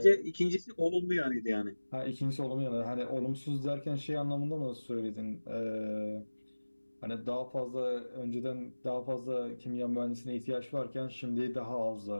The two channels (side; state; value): both; inverted; correlation -1.00